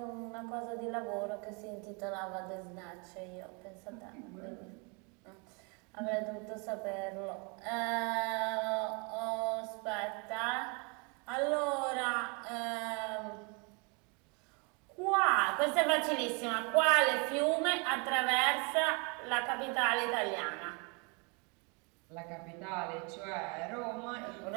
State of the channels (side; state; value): left; quieter; 32.2 dB